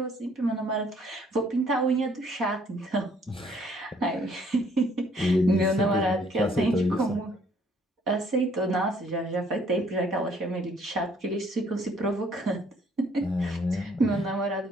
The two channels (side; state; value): both; normal; correlation 0.63